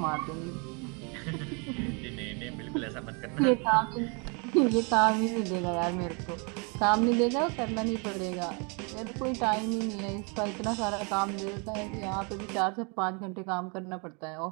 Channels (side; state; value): left; quieter; 33.7 dB